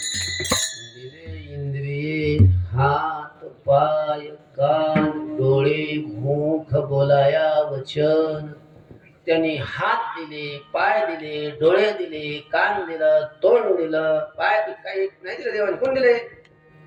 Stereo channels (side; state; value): both; identical; correlation 1.00